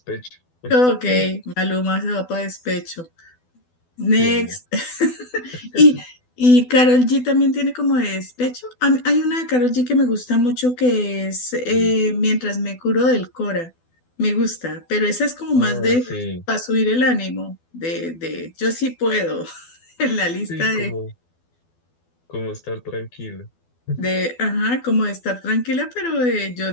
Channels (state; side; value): late; right; 12 ms